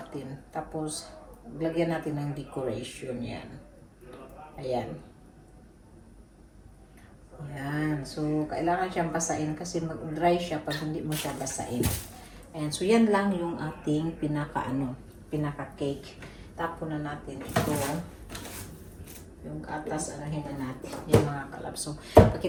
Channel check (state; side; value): identical; both; correlation 1.00